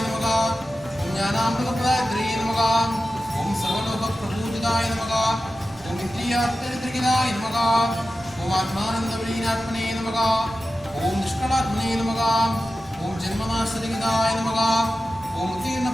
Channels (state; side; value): normal; both; correlation 0.93